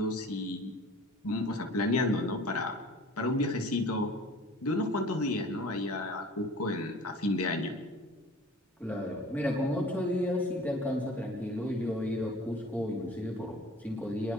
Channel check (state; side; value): normal; both; correlation 0.45